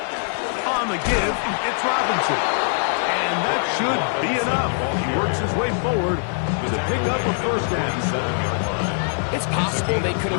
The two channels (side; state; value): right; silent; digital silence